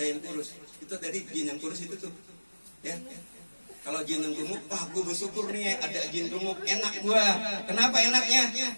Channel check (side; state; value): both; inverted; correlation -1.00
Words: kurus. Itu tadi jin yang kurus itu tuh. Ya. Kalau jin yang gemuk, wah gue bersyukur nih ada jin gemuk, enak gua. Kenapa enaknya?